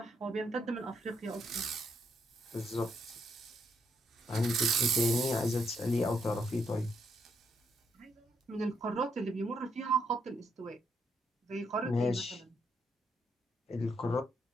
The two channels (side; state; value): both; normal; correlation 0.76